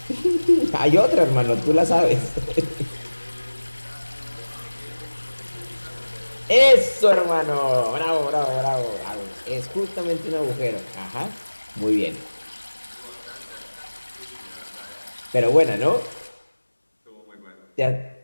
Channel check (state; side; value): inverted; both; correlation -1.00